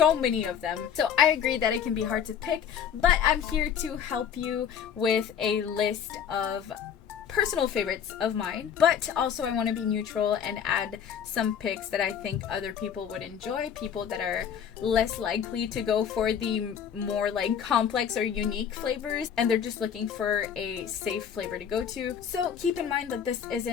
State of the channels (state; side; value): quieter; right; 8.2 dB